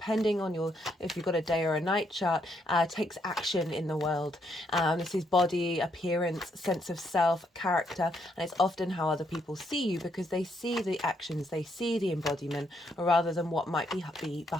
on if you've got a day or a night chart, takes action in the world. This is body, appearance, sense of self, character, and it's often how other people see you because they see the actions, they see the embodiment rather than what might be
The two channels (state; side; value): normal; both; correlation 0.75